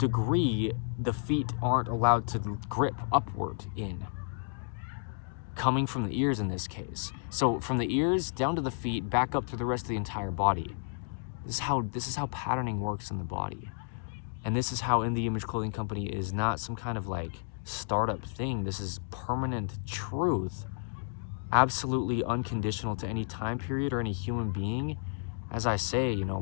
the feet aren't allowed to grip upward in, coming from the ears in this case. So from the ears down to the feet, back up to the rest of the entire body. This is how patterning works in the body. And this is how In the Image Clothing Company is not some kind of like startup thing. This is permanent truth, absolutely unconditional to any time period or any human being. As I say, you know,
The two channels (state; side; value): silent; right; digital silence